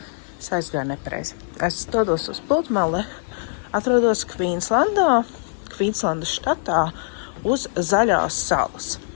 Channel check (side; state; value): right; silent; digital silence